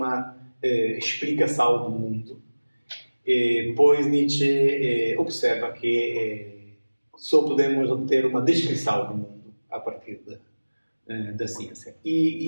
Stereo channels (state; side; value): inverted; both; correlation -1.00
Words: explicação do mundo, pois Nietzsche observa que só podemos obter uma descrição do mundo a partir da ciência.